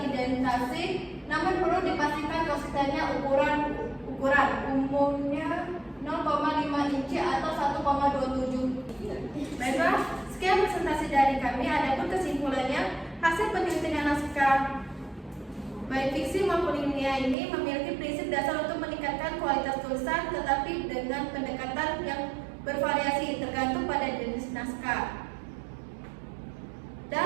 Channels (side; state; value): left; drops out; at 17.4 s